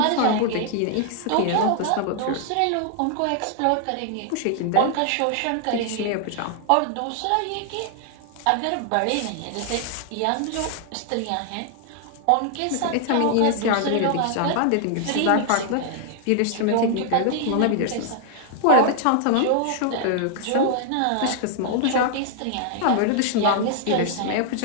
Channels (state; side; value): different; both; correlation 0.00